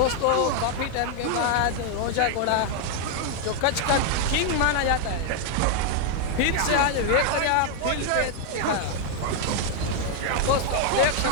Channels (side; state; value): both; different; correlation 0.00